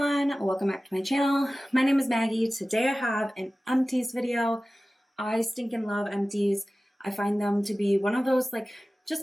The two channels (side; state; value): both; normal; correlation 0.96